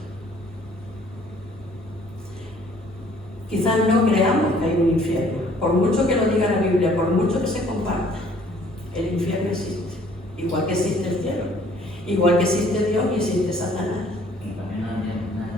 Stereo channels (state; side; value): normal; both; correlation 0.58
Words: Quizás no creamos que hay un infierno, por mucho que lo diga la Biblia, por mucho que se comparta, el infierno existe, igual que existe el cielo, igual que existe Dios y existe Satanás.